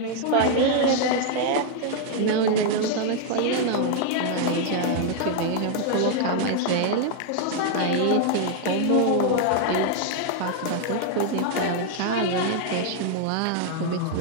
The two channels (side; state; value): both; different; correlation 0.00